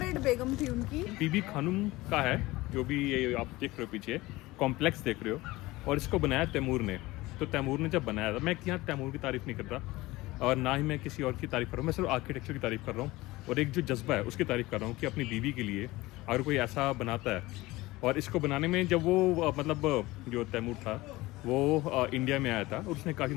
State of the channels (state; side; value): quieter; right; 19.7 dB